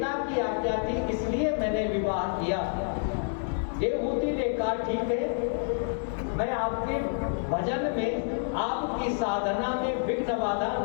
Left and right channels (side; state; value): right; silent; 59 dB below the other